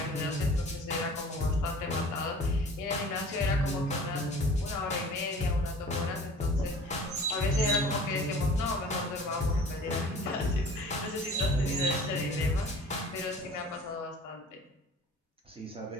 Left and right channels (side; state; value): both; normal; correlation 0.45